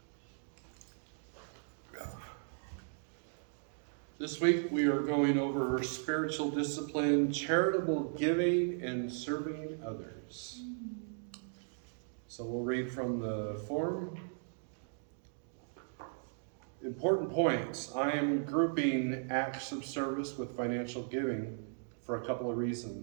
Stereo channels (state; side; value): silent; left; digital silence